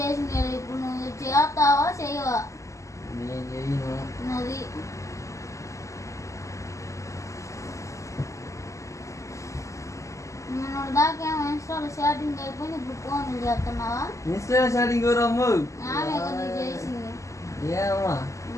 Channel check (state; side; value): late; right; 0.15 ms